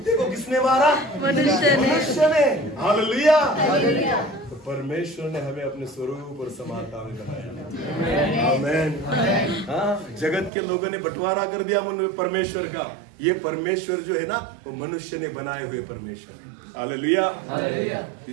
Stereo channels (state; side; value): drops out; left; at 10.5 s